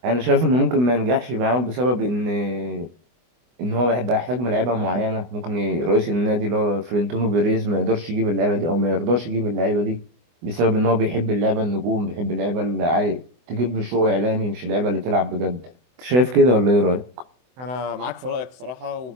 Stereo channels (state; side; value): late; left; 24 ms